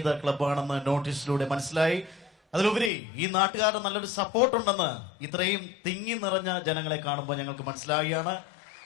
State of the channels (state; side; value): drops out; right; at 2.9 s